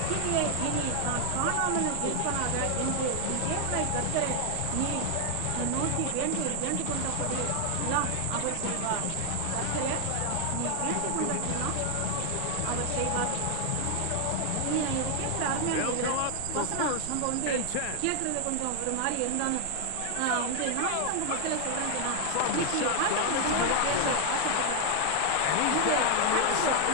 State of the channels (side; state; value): both; different; correlation 0.00